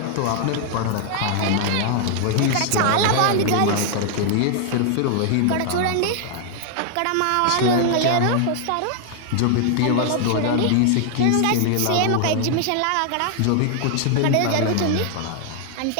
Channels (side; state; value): both; different; correlation 0.00